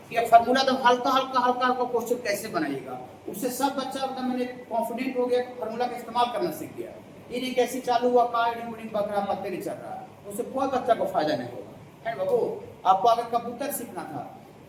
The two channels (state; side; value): identical; both; correlation 1.00